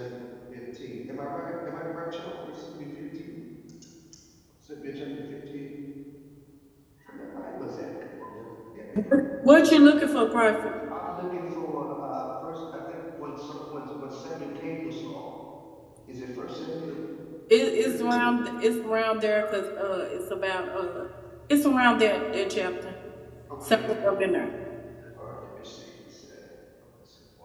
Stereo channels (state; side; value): identical; both; correlation 1.00